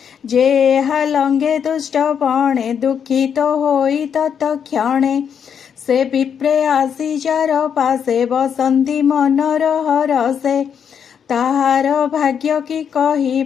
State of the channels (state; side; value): quieter; right; 7.7 dB